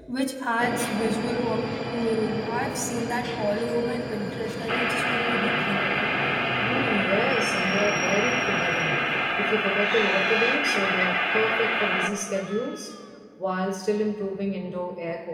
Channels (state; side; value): identical; both; correlation 1.00